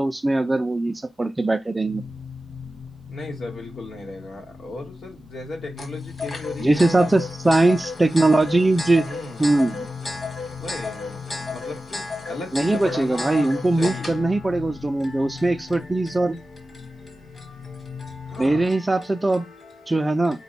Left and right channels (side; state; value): both; normal; correlation 0.95